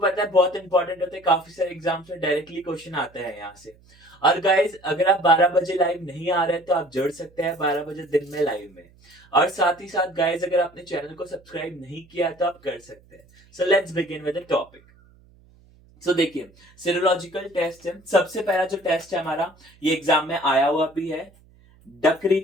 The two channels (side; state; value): right; noise; hum, 28 dB below the sound